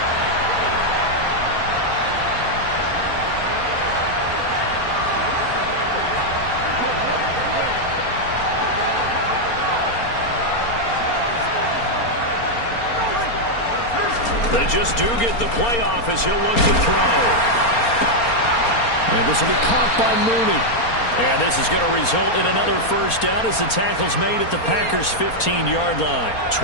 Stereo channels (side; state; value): right; late; 4.3 ms